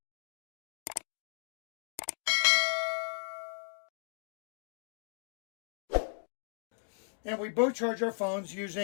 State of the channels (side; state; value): right; silent; digital silence